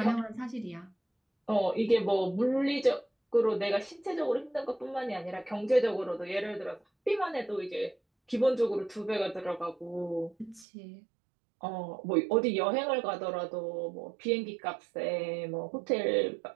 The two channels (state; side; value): drops out; left; at 10.7 s